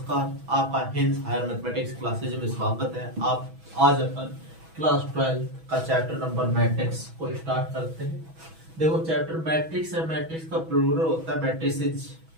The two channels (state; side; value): late; left; 6.1 ms